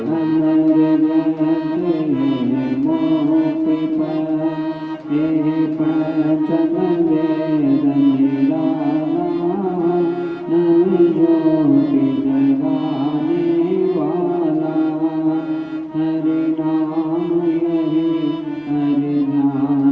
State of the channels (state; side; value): identical; both; correlation 1.00